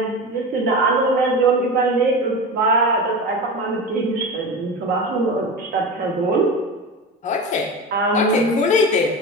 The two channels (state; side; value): normal; both; correlation 0.27